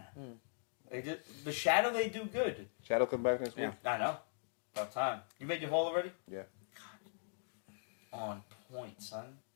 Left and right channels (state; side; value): silent; right; digital silence